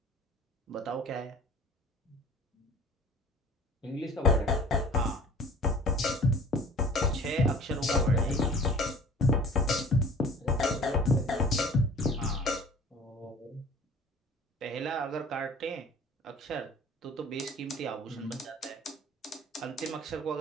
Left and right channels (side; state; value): both; normal; correlation 0.45